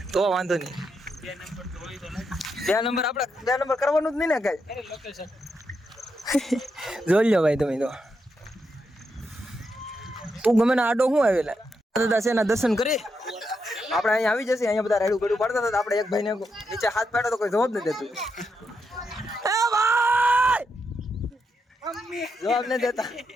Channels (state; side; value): normal; both; correlation 0.82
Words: તો વાંધો નહીં. 2 નંબર આપણે 2 નંબર કરવાનું જ નહીં ને કઈ. જોઈ લો ભાઈ તમે તો. તું ગમે ને આડો શું આવેલા દાદા છે એના દર્શન કરી આપણે અહીંયા આવી જશે. અહીંયા બધા રેડું ગડું પાડતા હતા. આપણે એક ભાઈને નીચે હાથ પાડ્યો તો કોઈ જવાબ નથી દેતું. એ ભાઈ જવાબ નથી દેતા.